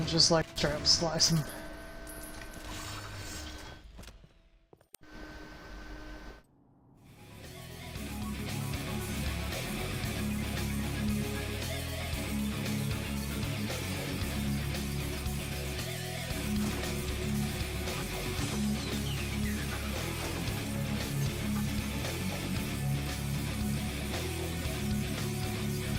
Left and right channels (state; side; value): identical; both; correlation 1.00